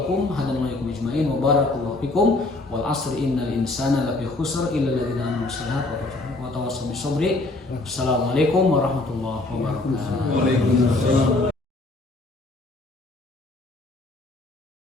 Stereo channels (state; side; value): quieter; right; 3.0 dB